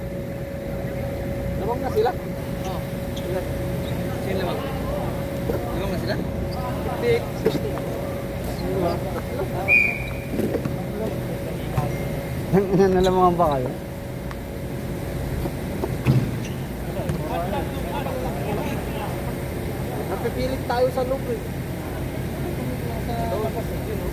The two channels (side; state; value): both; identical; correlation 1.00